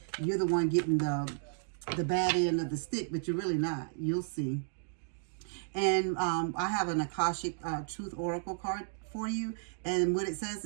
you're the one getting the bad end of the stick, but you're really not. You'll see. And I have an Akashic Truth Oracle card for you, and what it says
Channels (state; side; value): silent; left; digital silence